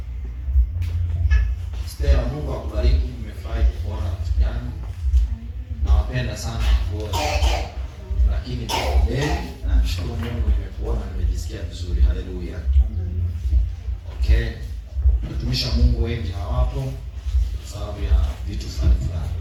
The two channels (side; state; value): both; identical; correlation 1.00